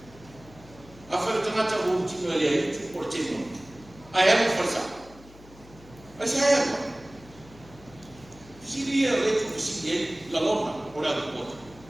a fa tamata o ti no le ai tu ko te mo Ayah berfasa. Saya apa? Dia itu presiden laloma orang buat.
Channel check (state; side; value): noise; left; hum, 22 dB below the sound